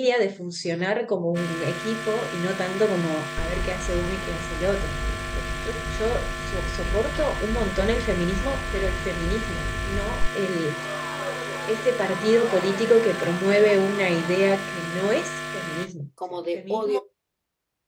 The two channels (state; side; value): identical; both; correlation 1.00